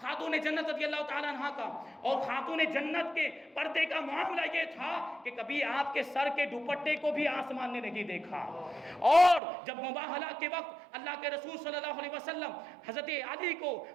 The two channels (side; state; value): left; drops out; at 9.4 s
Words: خاتون جنت رضی اللہ تعالیٰ عنہ کا۔ اور خاتون جنت کے پردے کا معاملہ یہ تھا کہ کبھی آپ کے سر کے دوپٹے کو بھی آسمان نے نہیں دیکھا۔ اور جب مباہلہ کے وقت اللہ کے رسول صلی اللہ علیہ وسلم حضرت علی کو،